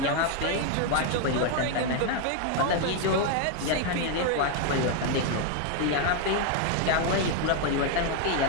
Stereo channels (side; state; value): both; different; correlation 0.01